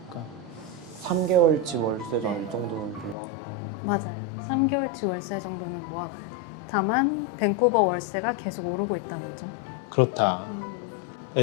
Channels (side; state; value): right; drops out; at 3.2 s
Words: 3개월치 월세전 네. 이 정도는 모아놓고 맞아요. 3개월치 월세 정도는 모아가야 돼요. 다만 밴쿠버 월세가 계속 오르고 있다는 점. 그렇다.